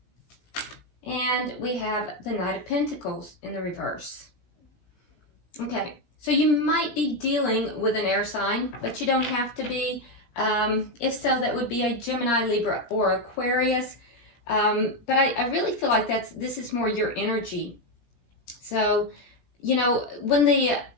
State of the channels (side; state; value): right; late; 17 ms